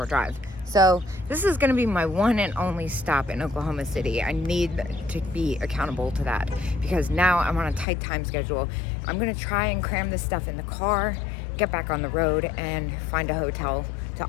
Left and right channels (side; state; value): right; drops out; at 7.9 s